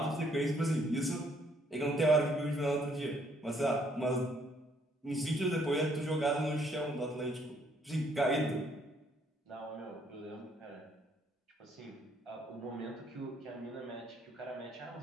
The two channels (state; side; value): normal; both; correlation 0.67